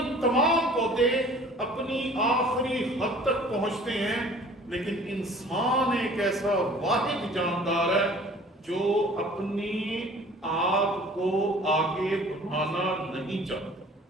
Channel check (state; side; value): normal; both; correlation 0.49